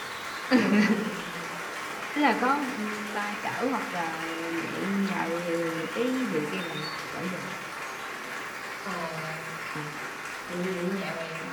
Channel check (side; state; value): both; identical; correlation 1.00